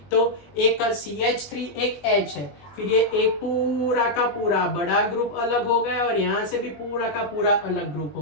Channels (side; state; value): right; late; 20 ms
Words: तो एक CH3 एक H है, फिर ये एक पूरा का पूरा बड़ा ग्रुप अलग हो गया और यहाँ से भी पूरा का पूरा अलग ग्रुप